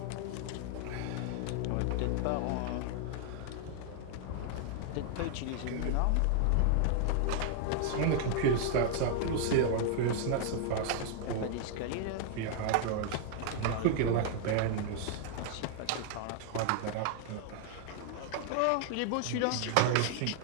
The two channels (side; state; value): both; different; correlation 0.00